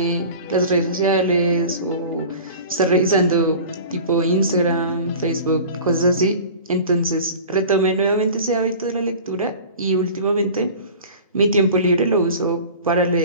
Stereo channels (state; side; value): inverted; both; correlation -0.39